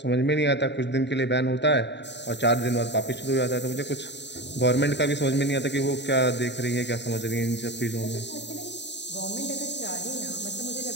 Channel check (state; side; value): late; right; 0.51 ms